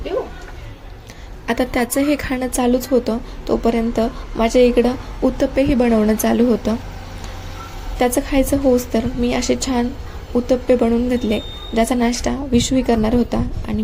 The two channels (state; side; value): identical; both; correlation 1.00